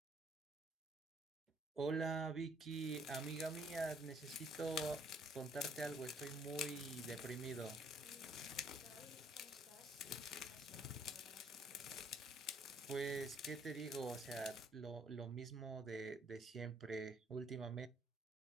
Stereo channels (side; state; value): both; normal; correlation 0.65